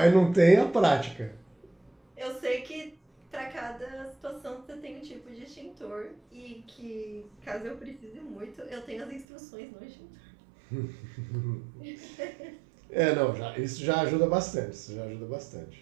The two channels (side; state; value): left; drops out; at 9.2 s